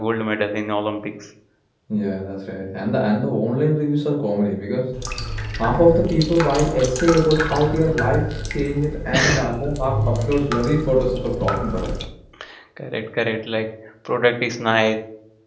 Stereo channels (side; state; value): both; identical; correlation 1.00